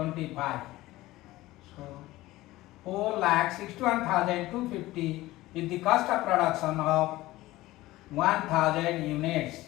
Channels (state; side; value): quieter; right; 17.7 dB